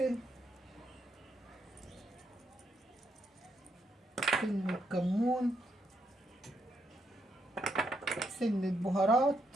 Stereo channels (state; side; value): normal; both; correlation 0.78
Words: سنة كمون، سنة بهارات،